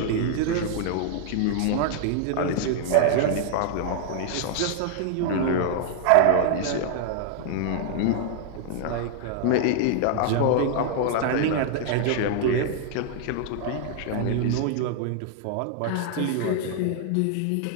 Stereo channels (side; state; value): both; different; correlation 0.00